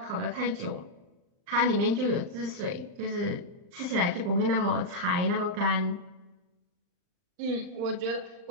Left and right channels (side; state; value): left; late; 39 ms